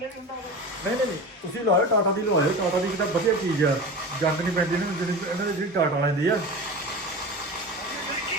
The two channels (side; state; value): both; normal; correlation 0.30